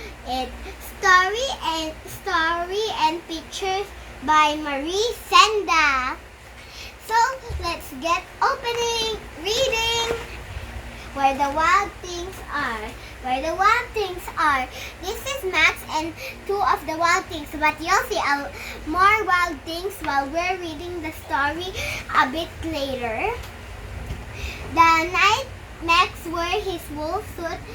it. Story and pictures by Maurice Sendak. So let's get reading. Where the Wild Things Are. Where the Wild Things Are. This is Max and two of the wild things, but you'll see more wild things while we're reading the story a bit later. The night Max wore his wool suit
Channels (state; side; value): identical; both; correlation 1.00